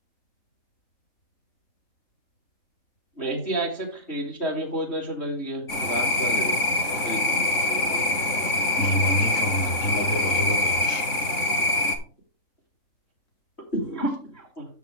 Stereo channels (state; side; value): late; right; 3.6 ms